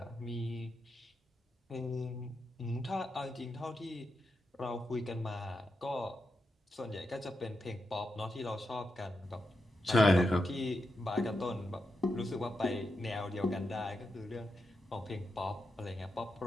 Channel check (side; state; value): both; normal; correlation 0.86